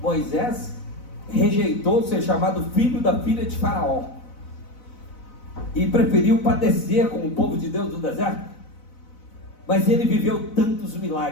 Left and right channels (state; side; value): late; right; 4.0 ms